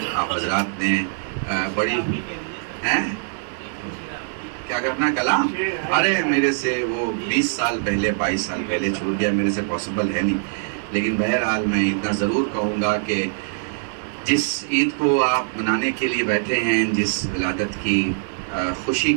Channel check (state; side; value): silent; left; digital silence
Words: آپ حضرات نے بڑی کیا کرنا کلام، ارے میرے سے وہ 20 سال پہلے 22 سال پہلے چھوٹ گیا، میرے سے پاسبل ہے نہیں. لیکن بہرحال میں اتنا ضرور کہوں گا کہ جس عید کو آپ منانے کے لیے بیٹھے ہیں، جس ولادت کی خوشی